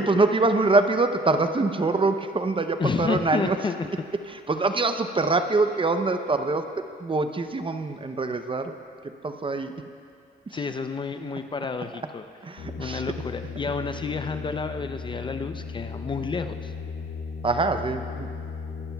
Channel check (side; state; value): both; normal; correlation 0.54